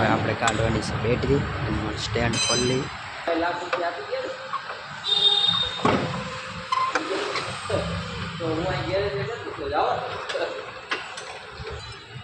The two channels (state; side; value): identical; both; correlation 1.00